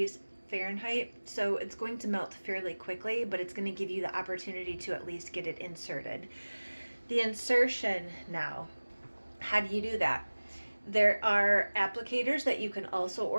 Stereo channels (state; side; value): inverted; both; correlation -1.00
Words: Fahrenheit, so it's going to melt fairly quickly, but it's going to give you the opportunity to at least get it inserted. The insertion now, how do you do that? There are applicators that you can also